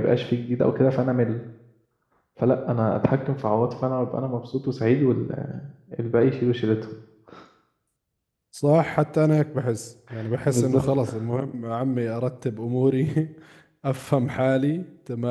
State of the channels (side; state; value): both; identical; correlation 1.00